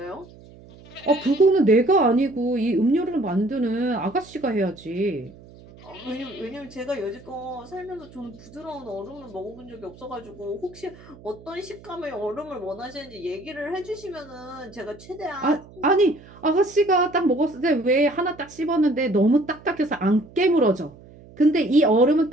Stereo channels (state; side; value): noise; right; hum, 21 dB below the sound